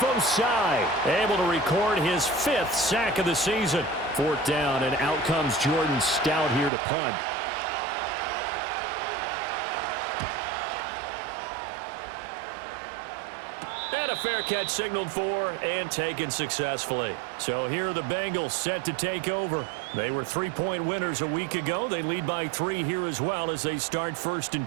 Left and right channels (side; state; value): left; drops out; at 6.7 s